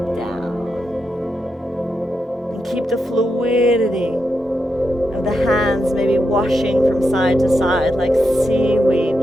down. And keep the fluidity of the hands maybe washing from side to side like seaweed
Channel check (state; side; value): normal; both; correlation 0.85